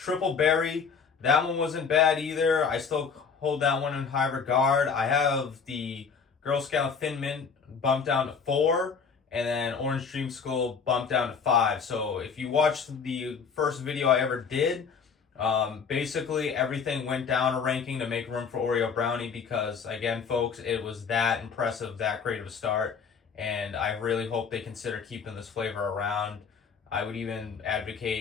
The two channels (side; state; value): right; quieter; 5.9 dB